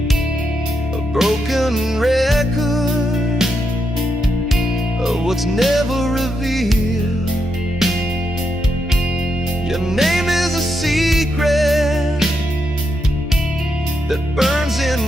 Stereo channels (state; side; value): normal; both; correlation 0.82